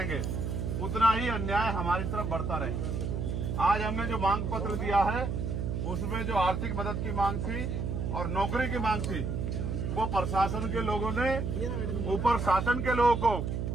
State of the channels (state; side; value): noise; right; hum, 2 dB below the sound